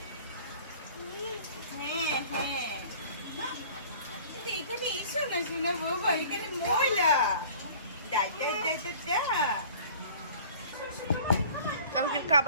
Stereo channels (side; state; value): both; inverted; correlation -0.48